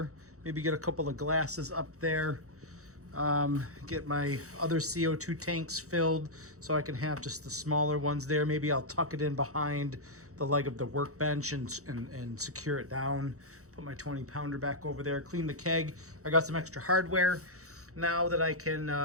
Maybe get a couple of glasses up there. Get my other CO2 tanks filled so I can have just the smaller ones there. Maybe I'll tuck it in behind the leg of the workbench and secure it down. Put my 20-pounder back over there. Clean the keg. I got some extra hardware now that I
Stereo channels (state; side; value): late; left; 0.65 ms